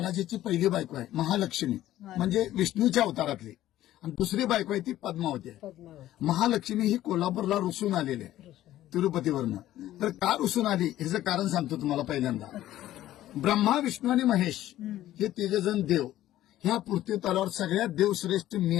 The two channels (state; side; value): quieter; right; 13.9 dB